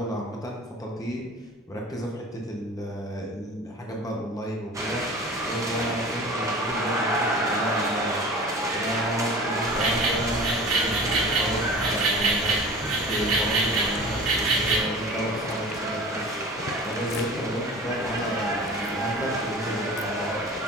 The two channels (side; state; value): both; normal; correlation 0.40